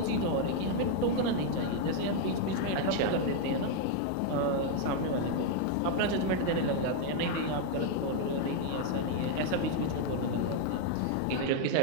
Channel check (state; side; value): different; both; correlation 0.00